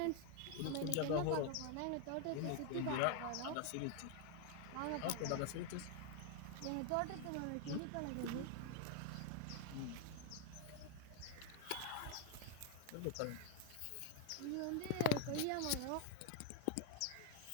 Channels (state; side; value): different; both; correlation 0.00